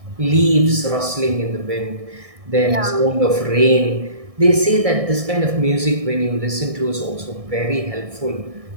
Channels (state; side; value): late; left; 1.6 ms